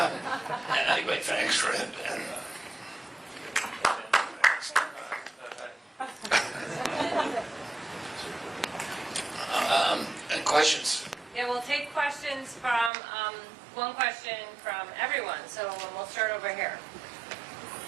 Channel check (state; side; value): drops out; left; at 12.9 s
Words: anyway, thanks for it. And questions? Yeah, we'll take questions from, one question from everyone. So we'll start over here.